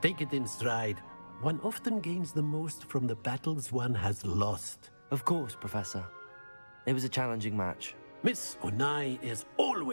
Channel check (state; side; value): inverted; both; correlation -1.00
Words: Take it in stride. One often gains the most from the battles one has lost. Of course, Professor. It was a challenging match. Miss Onai is